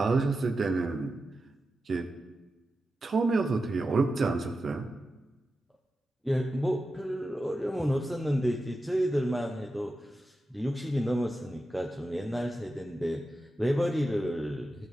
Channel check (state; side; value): normal; both; correlation 0.91